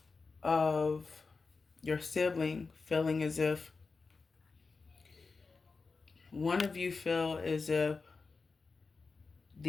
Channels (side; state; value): right; quieter; 4.4 dB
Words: of your sibling feeling as if one of you feel as if